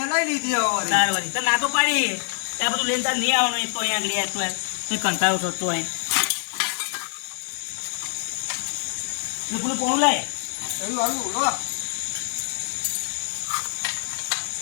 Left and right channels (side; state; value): right; silent; digital silence